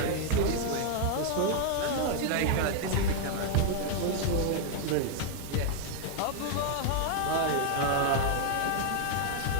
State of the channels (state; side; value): different; both; correlation 0.00